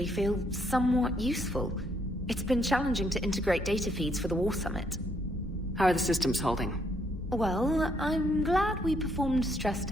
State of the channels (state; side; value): normal; both; correlation 0.72